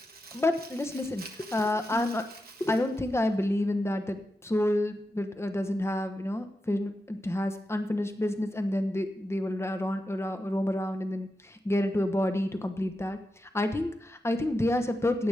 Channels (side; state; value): both; normal; correlation 0.89